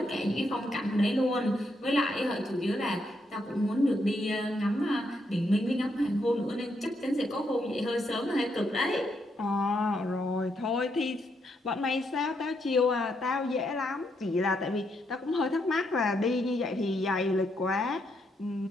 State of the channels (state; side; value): normal; both; correlation 0.78